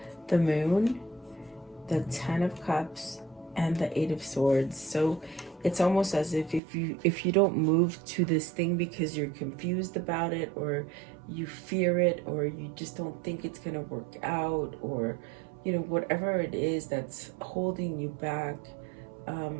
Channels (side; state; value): left; drops out; at 6.6 s